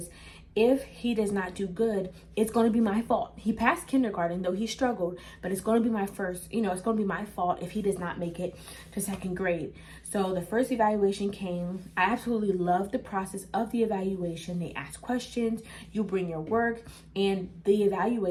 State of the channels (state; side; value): identical; both; correlation 1.00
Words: if he does not do good, it's going to be my fault. He passed kindergarten, though he struggled, but it's going to be my first, it's going to be my fault if he does not make it to second grade. So the first evaluation came. I absolutely loved the process of the evaluation. They ask questions, you bring your work, and the